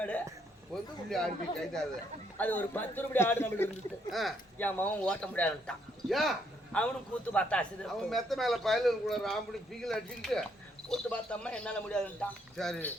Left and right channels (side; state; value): both; normal; correlation 0.71